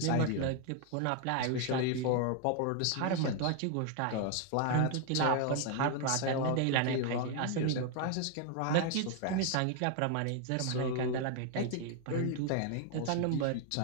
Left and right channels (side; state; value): both; different; correlation 0.00